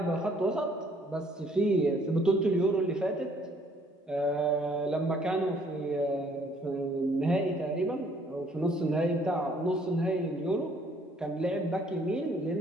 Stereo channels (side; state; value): both; normal; correlation 0.62